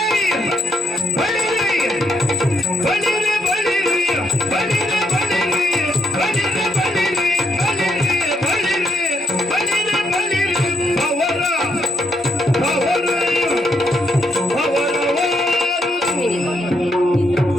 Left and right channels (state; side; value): normal; both; correlation 0.75